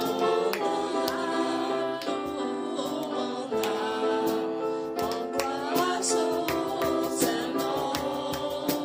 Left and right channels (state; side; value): identical; both; correlation 1.00